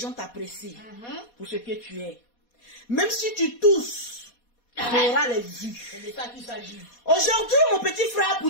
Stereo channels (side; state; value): right; late; 4.2 ms